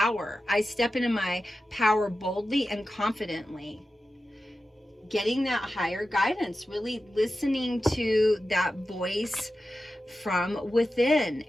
I step into my power boldly and confidently. Getting that higher guidance, really listening to that voice from within.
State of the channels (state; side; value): normal; both; correlation 0.92